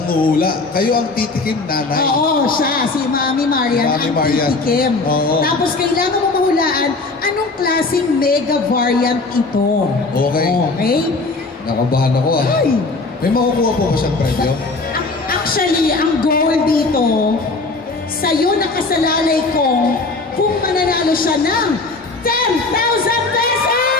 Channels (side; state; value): right; quieter; 3.6 dB